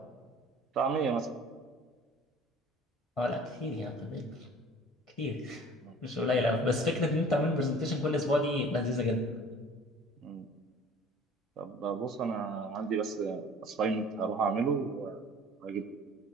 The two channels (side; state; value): both; normal; correlation 0.48